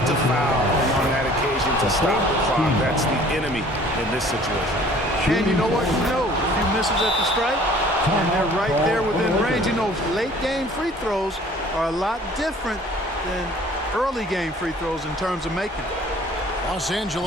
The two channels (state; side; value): normal; both; correlation 0.52